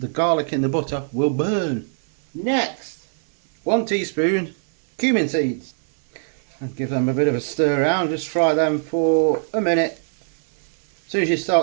garlic in the butter will burn. Next, 1 teaspoon cumin seeds. And give them a bit of a stir around. Just fry them for a minute. As soon as you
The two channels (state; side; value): silent; left; 65 dB below the other